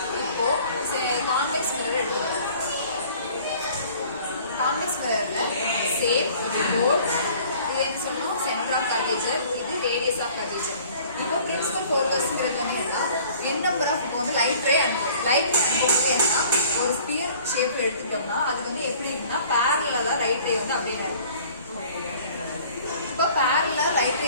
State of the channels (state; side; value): inverted; both; correlation -0.51